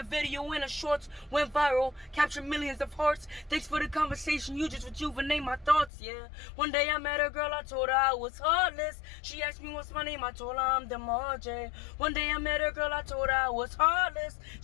video in a shorts, went viral, captured millions of hearts. Thanks for the conversation, you just rejuvenate my thoughts, yeah. One day I met a girl, I told her I was heartless. She asked me what's my name, I told her I'm DeMarjay. One day I met a girl, I told her I was heartless.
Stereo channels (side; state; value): right; drops out; at 5.9 s